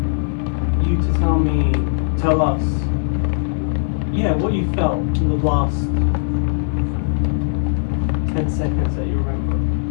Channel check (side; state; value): right; silent; 66 dB below the other